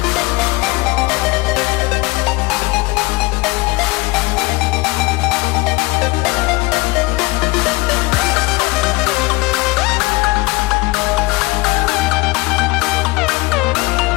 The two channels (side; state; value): right; quieter; 23.0 dB